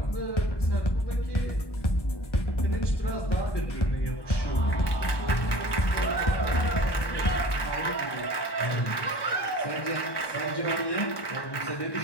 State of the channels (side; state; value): right; late; 1.2 ms